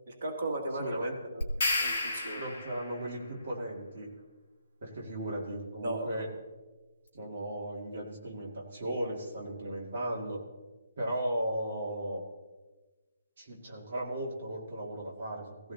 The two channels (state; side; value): inverted; both; correlation -0.76